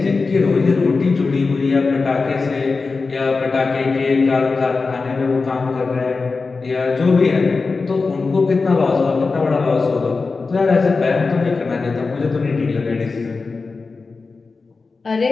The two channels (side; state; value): right; quieter; 4.2 dB